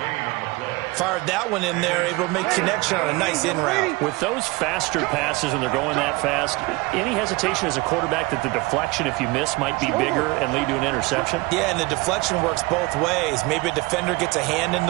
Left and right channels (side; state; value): left; quieter; 23.0 dB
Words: on the play. Fired that one in there, able to make connection on a nice in route. With those faster passes, when they're going that fast, any hesitation as a quarterback that the deflection, if you miss, might be bigger and lead to an interception? Yeah, and the deflection works both ways. Maybe a defender gets a hand in